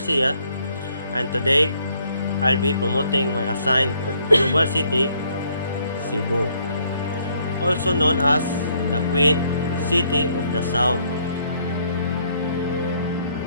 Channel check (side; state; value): both; inverted; correlation -0.68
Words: and today I'll be promoting my assigned global city, Cebu, also known as the Queen City of the South.